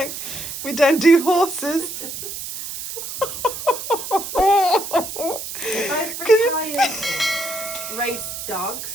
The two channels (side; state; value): right; noise; hiss, 8 dB below the sound